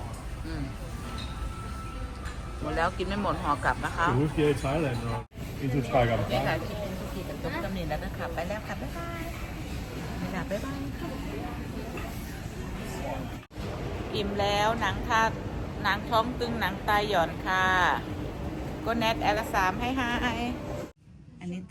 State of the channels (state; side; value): identical; both; correlation 1.00